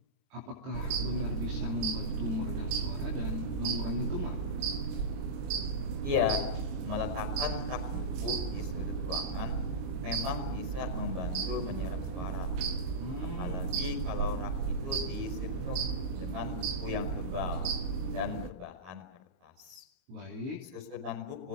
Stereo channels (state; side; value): late; left; 23 ms